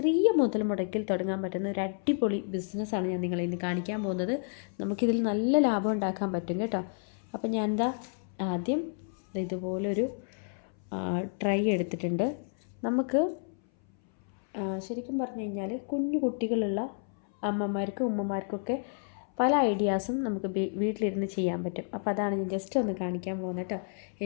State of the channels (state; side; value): silent; right; 58 dB below the other